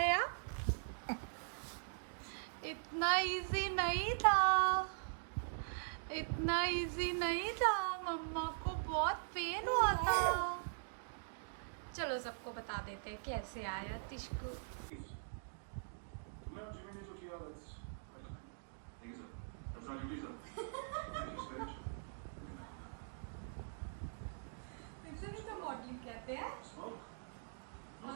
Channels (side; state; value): left; silent; digital silence